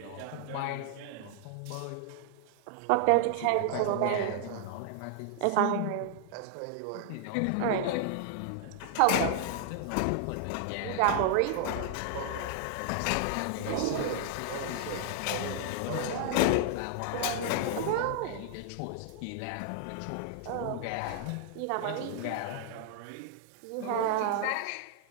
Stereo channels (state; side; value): different; both; correlation 0.00